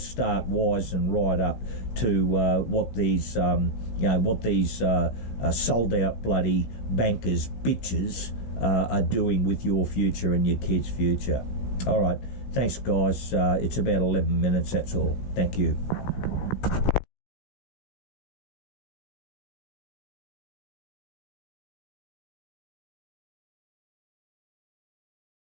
wise and right up to what these sold out bloody bankers bitches are doing with your future and your kids' future. All right, thanks guys. It's about 11 minutes. That's all. Thank you.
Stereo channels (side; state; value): right; late; 16 ms